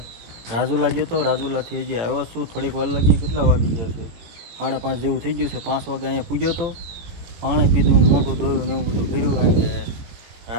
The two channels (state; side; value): late; left; 17 ms